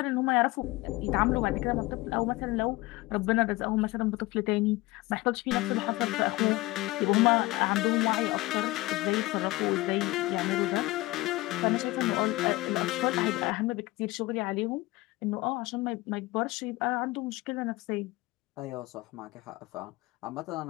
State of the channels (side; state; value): right; quieter; 20.3 dB